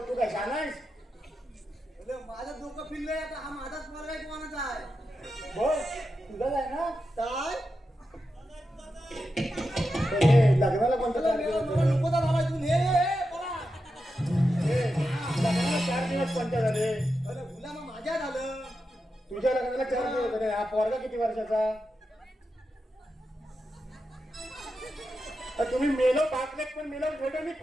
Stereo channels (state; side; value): normal; both; correlation 0.89